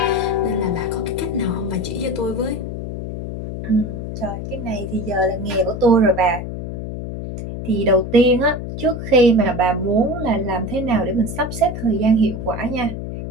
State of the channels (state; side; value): noise; left; hum, 6 dB below the sound